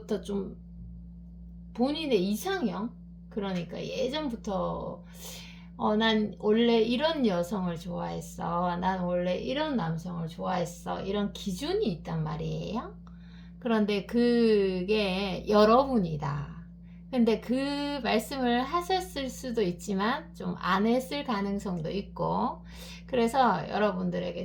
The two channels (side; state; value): both; identical; correlation 1.00